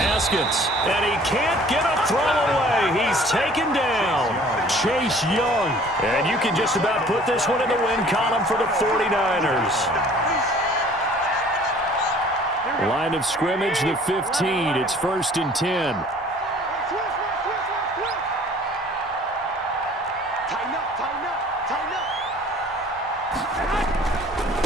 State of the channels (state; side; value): normal; both; correlation 0.52